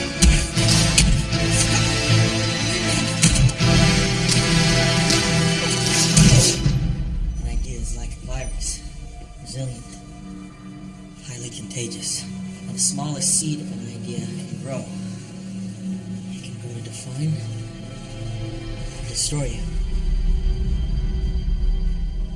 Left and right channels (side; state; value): both; identical; correlation 1.00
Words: An idea is like a virus. Resilient. Highly contagious. Now, the smallest seed of an idea can grow. It can grow to define and destroy you.